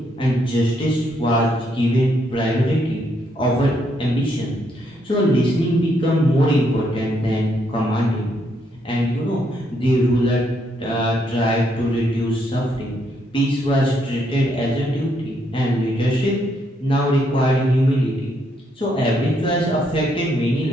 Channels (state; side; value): normal; both; correlation 0.74